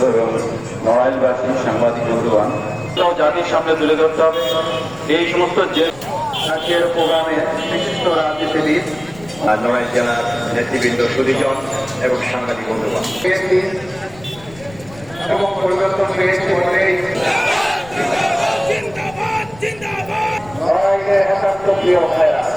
এবং নড়াইলবাসী সাংবাদিক বন্ধুগণ জাতির সামনে তুলে ধরতে হবে এই সমস্ত আজকের প্রোগ্রামে বিশিষ্ট রাজনীতিবিদ নড়াইল জেলার নেতৃবৃন্দ সুদীজন এবং সাংবাদিক বন্ধুগণ এবং পরিবর্তন পেয়েছে নড়াইলে একান্ত প্রিয় ভাইয়া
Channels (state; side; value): noise; left; rumble, 21 dB below the sound